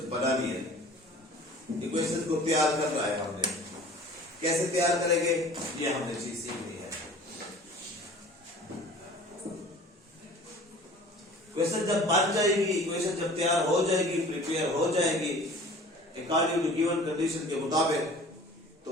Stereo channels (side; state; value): both; normal; correlation 0.46